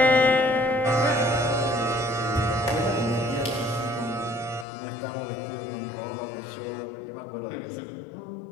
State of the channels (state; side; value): drops out; right; at 4.7 s